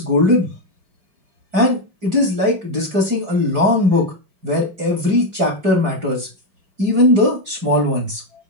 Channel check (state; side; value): late; left; 4.8 ms